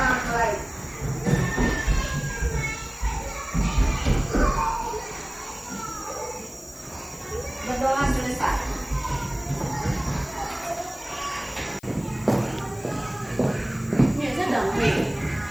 mulai. Berdoa selesai.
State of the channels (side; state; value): left; noise; hiss, 24 dB below the sound